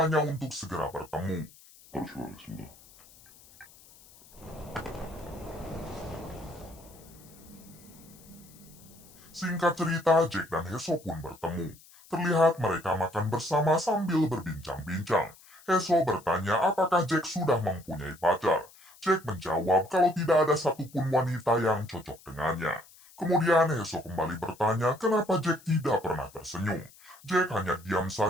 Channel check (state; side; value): noise; left; hiss, 24 dB below the sound